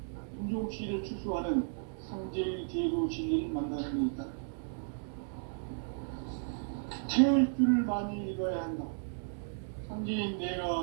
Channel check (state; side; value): silent; left; digital silence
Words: 인종씨를 추수하는 상제의 대도 진리를 만나는 데 있다. 태을 줄을 많이 읽어야 한다. 상제인